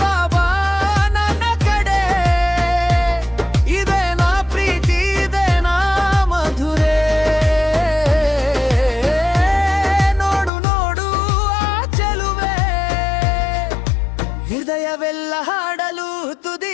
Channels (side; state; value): right; drops out; at 10.5 s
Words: ಬಾಬಾ ನನ್ನ ಕಡೆ, ಇದೇನಾ ಪ್ರೀತಿ ಇದೇನಾ ಮಧುರೆ, ನೋಡು ನೋಡು ಆ ಚೆಲುವೆ, ಹೃದಯವೆಲ್ಲ ಹಾಡಲು